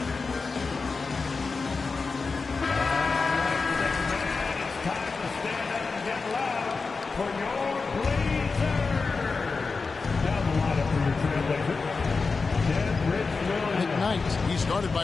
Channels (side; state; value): right; quieter; 4.4 dB